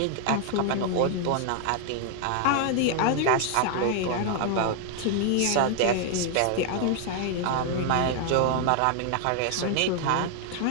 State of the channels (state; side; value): different; both; correlation 0.00